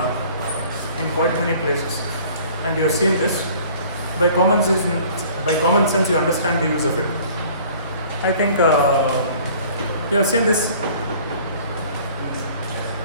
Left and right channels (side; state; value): both; inverted; correlation -0.51